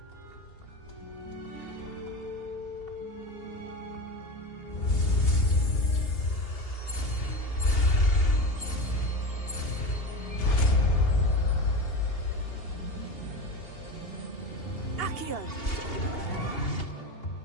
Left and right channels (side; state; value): right; late; 2.8 ms